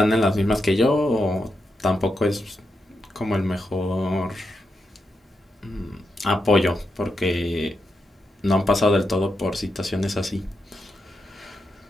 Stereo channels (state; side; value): normal; both; correlation 0.85